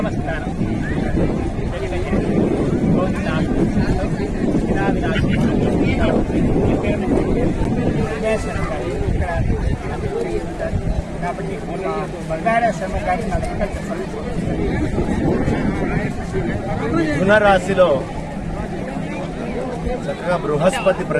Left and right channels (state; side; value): identical; both; correlation 1.00